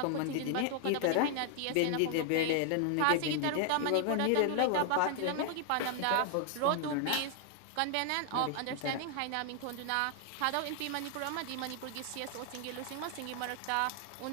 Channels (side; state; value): both; different; correlation 0.00